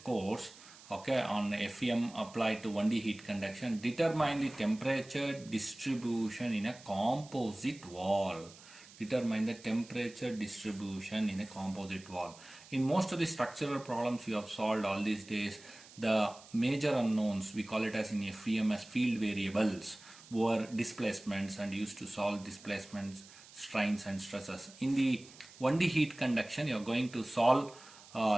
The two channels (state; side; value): noise; right; hiss, 20 dB below the sound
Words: course. Okay, on FEM applied to 1D heat conduction, determine the temperature distribution in a composite wall. Determine the temperature distribution in a composite wall. In most of the structural problems you have solved all these days, the major unknowns, we call it as in FEM as field variables, were displacements and used to solve displacements, strains and stresses. In the 1D heat conduction, you are going to solve